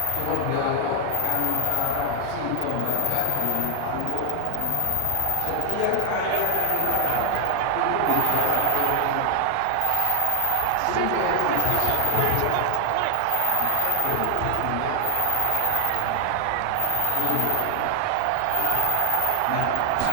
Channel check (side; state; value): both; different; correlation 0.00